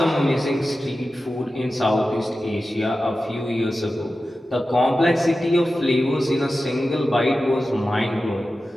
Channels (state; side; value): normal; both; correlation 0.93